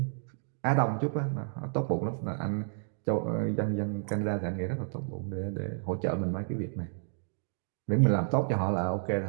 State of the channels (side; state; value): left; silent; digital silence